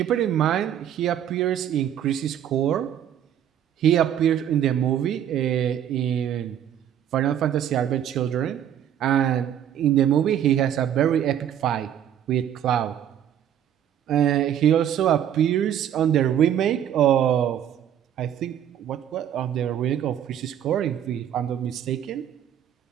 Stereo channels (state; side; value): quieter; left; 10.1 dB